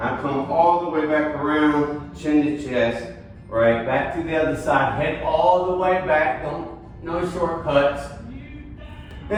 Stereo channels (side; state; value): both; identical; correlation 1.00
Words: come all the way back around, chin to chest, right? Back to the other side, head all the way back. No shortcuts.